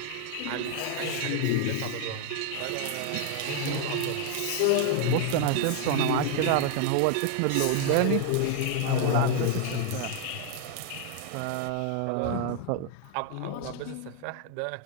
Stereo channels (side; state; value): both; different; correlation 0.00